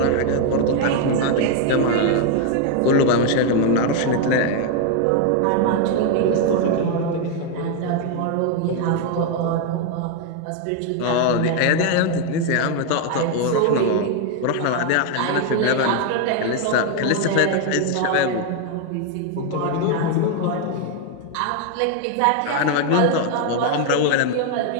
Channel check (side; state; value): both; different; correlation 0.01